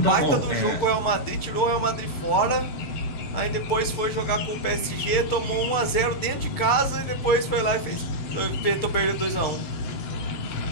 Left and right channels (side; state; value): right; late; 6.7 ms